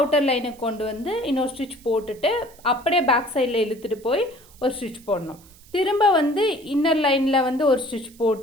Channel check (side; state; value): right; noise; hiss, 25 dB below the sound